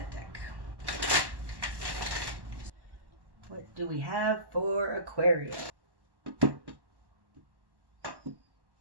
deck. What do we have for Aquarius? Okay.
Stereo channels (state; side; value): late; left; 1.1 ms